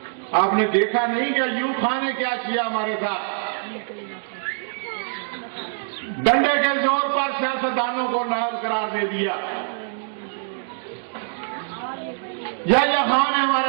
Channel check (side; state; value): left; silent; digital silence